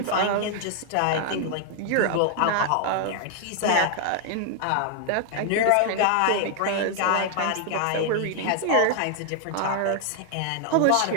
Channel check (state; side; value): different; both; correlation 0.00